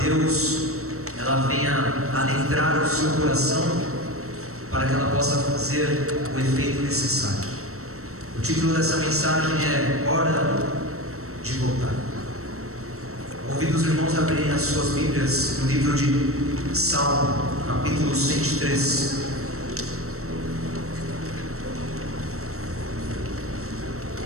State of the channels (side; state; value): left; late; 0.64 ms